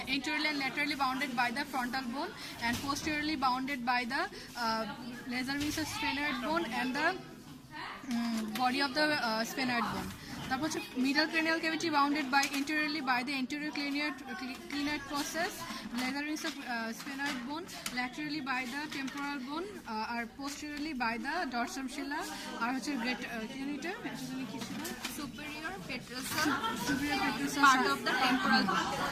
and laterally bounded by the frontal bone, and posteriorly bounded by the laser wings of sphenoid bone and the body of the sphenoid bone. তারপর হচ্ছে middle cranial cavity bounded by anteriorly by the anterior clinoid process, laser wings of sphenoid bone, laterally by the temporal bone, or posteriorly by the dorsum sella, আর হচ্ছে great superior petrosal part of the temporal bone.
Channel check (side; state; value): both; identical; correlation 1.00